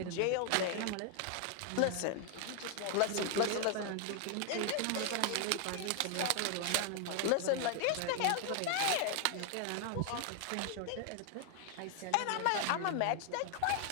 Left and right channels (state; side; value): different; both; correlation 0.00